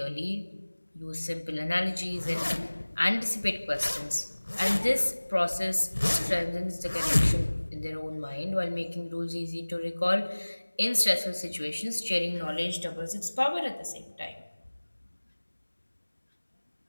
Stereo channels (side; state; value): both; inverted; correlation -1.00